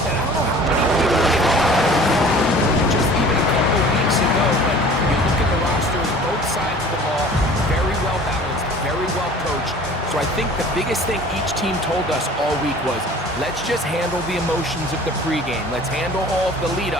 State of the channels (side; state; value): both; normal; correlation 0.46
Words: that I don't know how many people can call just even a couple weeks ago, but you look at the rosters, both sides of the ball, very well balanced, very well coached. So I think the biggest thing each team told us all week was, let's just handle the emotions of the pregame. Let's handle all of the lead